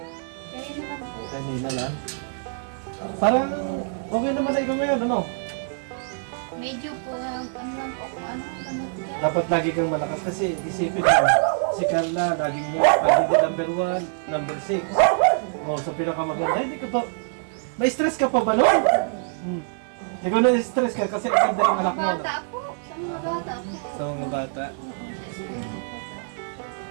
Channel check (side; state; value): left; silent; 62 dB below the other